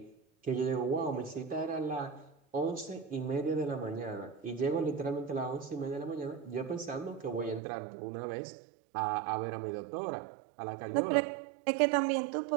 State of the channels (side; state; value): left; drops out; at 7.6 s